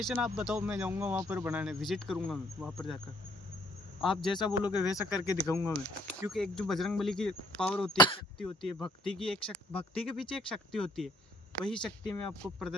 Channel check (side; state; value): both; normal; correlation 0.63